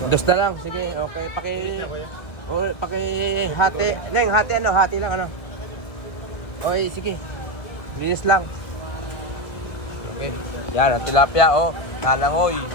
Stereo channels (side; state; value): right; late; 1.7 ms